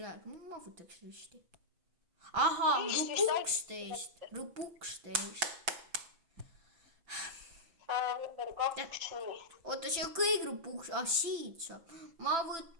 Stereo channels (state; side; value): late; left; 6.0 ms